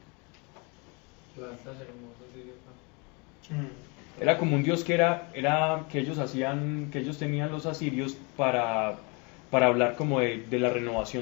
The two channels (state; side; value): quieter; right; 30.8 dB